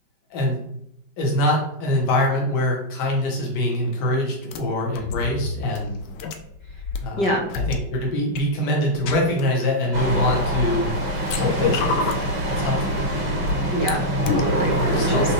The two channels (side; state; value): right; late; 5.1 ms